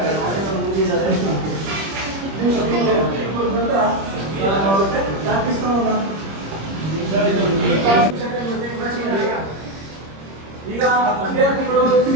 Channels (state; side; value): late; left; 26 ms